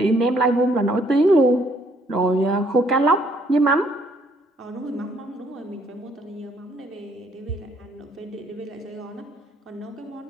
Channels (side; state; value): both; normal; correlation 0.66